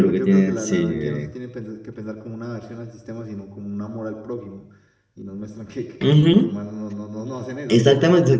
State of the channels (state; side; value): identical; both; correlation 1.00